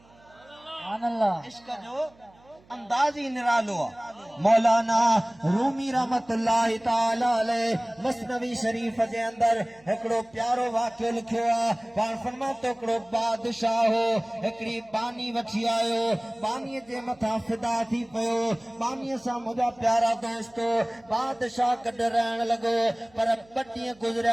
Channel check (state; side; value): noise; right; hum, 29 dB below the sound